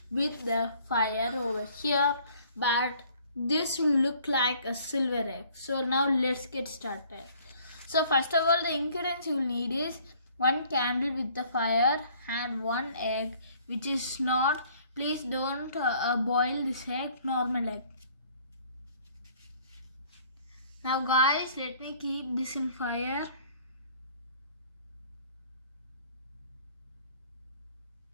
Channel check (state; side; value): inverted; both; correlation -0.57